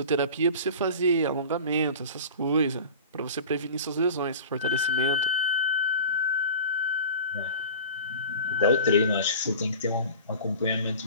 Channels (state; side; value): inverted; both; correlation -0.37